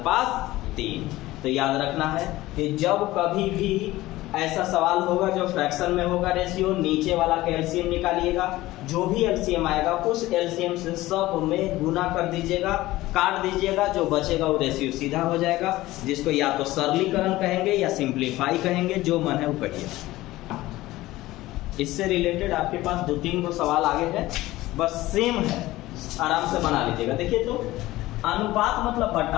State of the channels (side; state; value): right; quieter; 17.5 dB